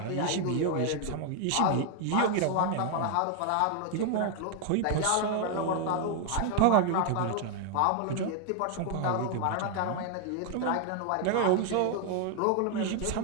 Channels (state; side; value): different; both; correlation 0.00